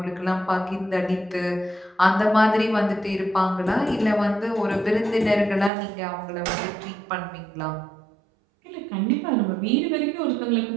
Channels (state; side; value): drops out; left; at 5.7 s